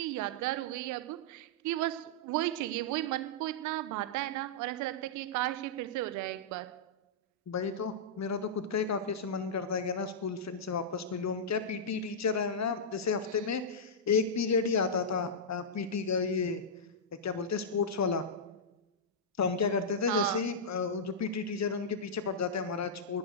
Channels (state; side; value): normal; both; correlation -0.11